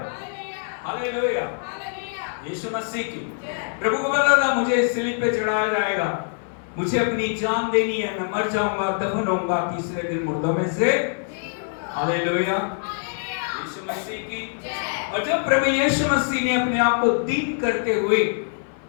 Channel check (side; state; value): right; silent; 57 dB below the other